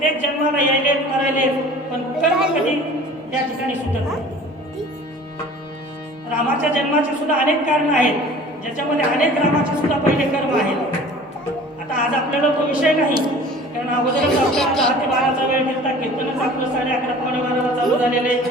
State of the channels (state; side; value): normal; both; correlation 0.45